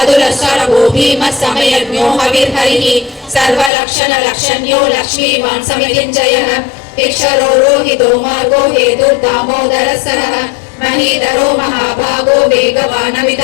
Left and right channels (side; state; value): right; drops out; at 3.7 s